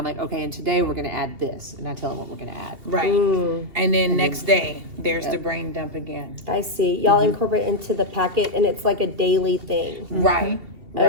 like, okay, and today we're gonna add this, and I tell them what we're gonna add. Right. And then next day, there's the brain dump again. I see. Y'all incorporate into the packet, and it's like a daily thing. Right.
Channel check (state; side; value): late; left; 2.7 ms